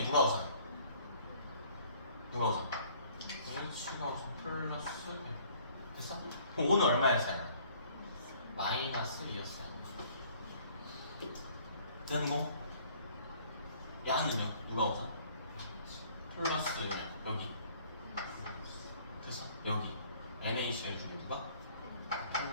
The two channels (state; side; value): inverted; both; correlation -0.57